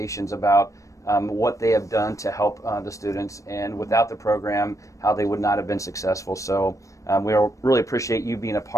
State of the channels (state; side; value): late; right; 0.16 ms